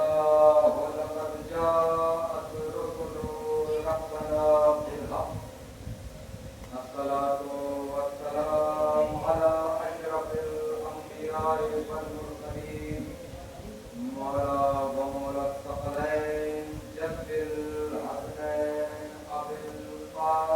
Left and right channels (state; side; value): identical; both; correlation 1.00